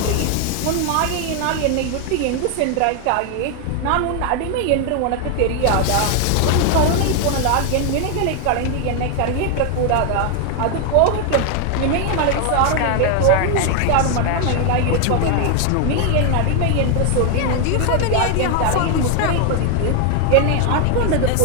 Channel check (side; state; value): both; different; correlation 0.01